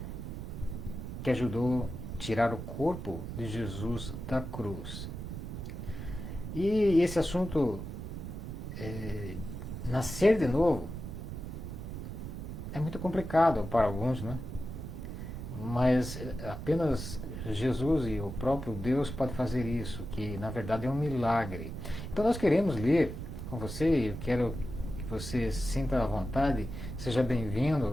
que ajudou a tirar o corpo de Jesus da cruz. E esse assunto, nascer de novo, é muito complicado para alguns, né? Mas apenas Jesus e o próprio Deus pode fazer isso, que na verdade é um milagre. Então nós queremos ler com você, eu quero que você se sinta à vontade, seja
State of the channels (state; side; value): noise; right; rumble, 7 dB below the sound